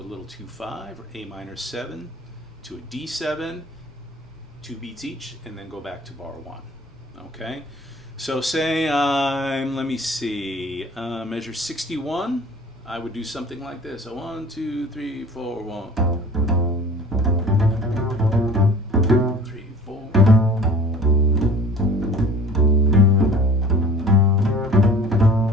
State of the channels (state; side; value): normal; both; correlation 0.44